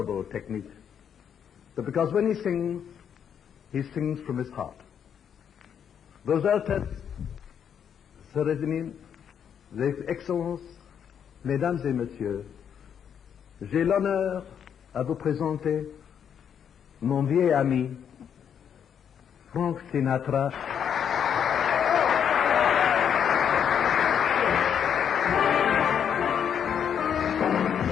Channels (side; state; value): right; quieter; 8.2 dB